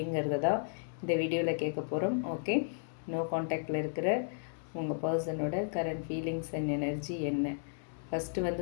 தான் இந்த வீடியோவில் கேட்க போகிறோம். ஓகே, நோ கான்டாக்டில் இருக்கிற உங்கள் பர்சனோட கரண்ட் ஃபீலிங்ஸ் அண்ட் எனர்ஜி என்ன. ஃபஸ்ட்டு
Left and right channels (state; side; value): silent; right; digital silence